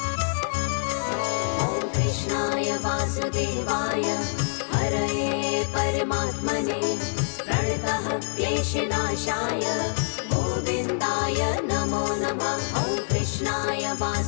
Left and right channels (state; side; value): silent; right; 61 dB below the other